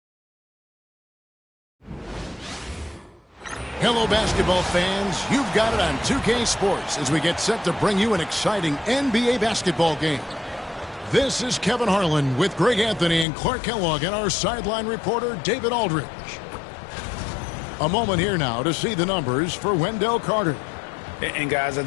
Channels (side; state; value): right; drops out; at 13.2 s